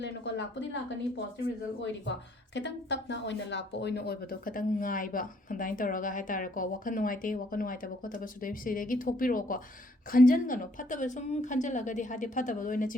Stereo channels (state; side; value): normal; both; correlation 0.66